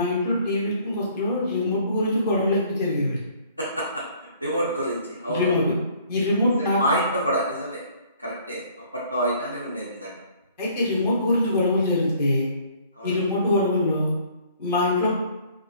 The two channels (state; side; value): inverted; both; correlation -0.57